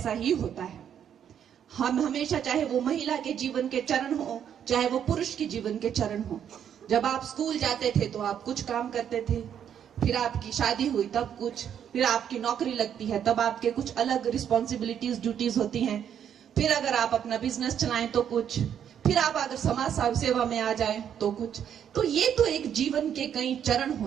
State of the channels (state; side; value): quieter; left; 9.0 dB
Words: ही होता है। हम हमेशा, चाहे वो महिला के जीवन के चरण हो, चाहे वो पुरुष के जीवन के चरण हो, जब आप स्कूल जाते थे तो आप कुछ काम करते थे, फिर आपकी शादी हुई तब कुछ, फिर आपकी नौकरी लगती है तब आपके कुछ अलग रिस्पॉन्सिबिलिटीज ड्यूटीज होती हैं, फिर अगर आप अपना बिजनेस चलाएं तो कुछ, फिर आप अगर समाज सेवा में आ जाएं तो कुछ। तो ये तो एक जीवन के कई चरण